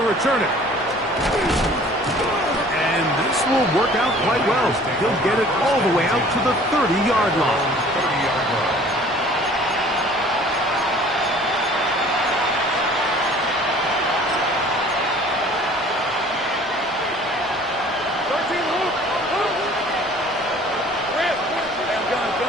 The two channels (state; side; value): normal; both; correlation 0.50